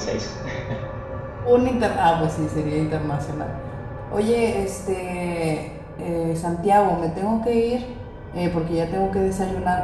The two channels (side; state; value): both; identical; correlation 1.00